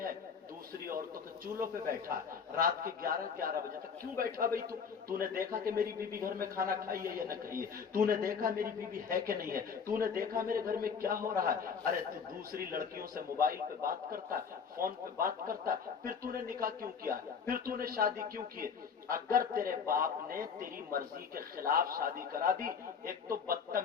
है, दूसरी औरतों के चूल्हों पे बैठा है, रात के 11 बजे तक क्यों बैठा भाई? तूने देखा कि मेरी बीबी घर में खाना खाई है या न खाई है? तूने देखा मेरी बीबी है कि नहीं है? तूने देखा मेरे घर में क्या हो रहा है? अरे तू दूसरी लड़कियों से मोबाइल पे बात करता है, फोन पे बात करता है, फिर तूने निकाह क्यों किया? फिर तूने शादी क्यों की? अगर तेरे बाप ने तेरी मर्जी के खिलाफ शादी करा दी, एक तो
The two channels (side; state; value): right; quieter; 6.3 dB